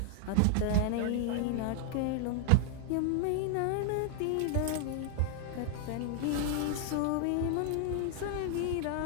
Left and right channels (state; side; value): different; both; correlation -0.01